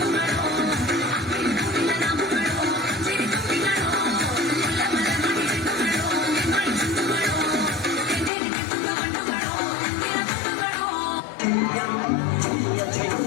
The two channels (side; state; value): right; drops out; at 8.3 s